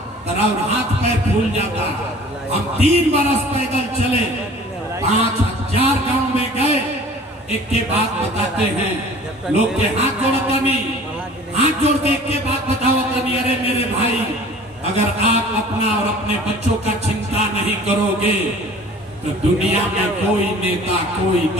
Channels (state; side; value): normal; both; correlation 0.46